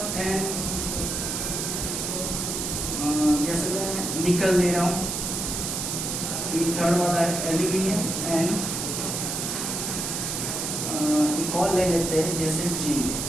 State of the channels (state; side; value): noise; right; hiss, 2 dB below the sound